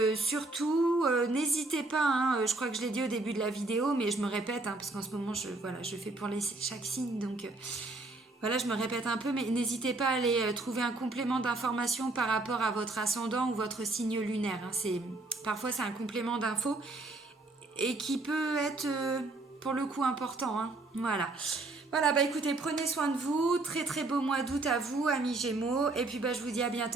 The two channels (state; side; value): quieter; left; 3.1 dB